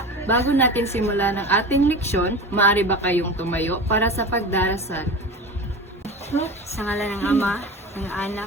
Bago natin simulan ang ating leksyon, maaari ba kayong tumayo para sa pagdarasal? Sa ngalan ng Ama, ng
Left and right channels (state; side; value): normal; both; correlation 0.31